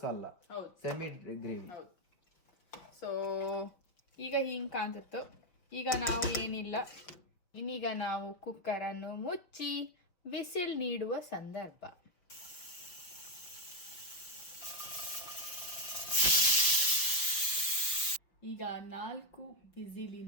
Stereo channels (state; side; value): late; right; 5.9 ms